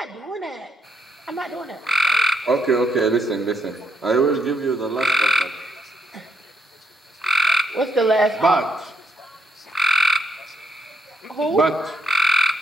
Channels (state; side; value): normal; both; correlation 0.74